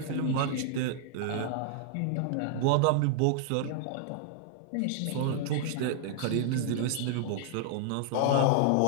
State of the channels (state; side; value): different; both; correlation 0.00